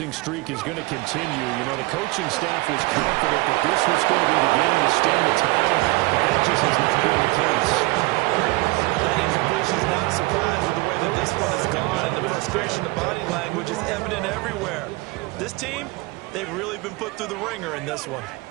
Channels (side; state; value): left; quieter; 23.0 dB